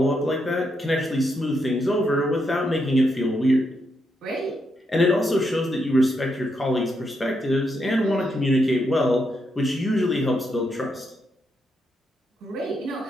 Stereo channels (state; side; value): normal; both; correlation 0.81